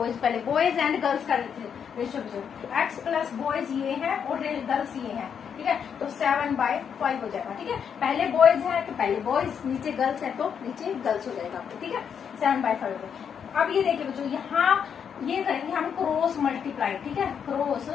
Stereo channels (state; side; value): quieter; right; 7.5 dB